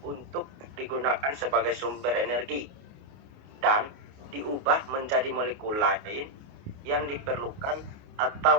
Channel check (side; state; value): left; late; 28 ms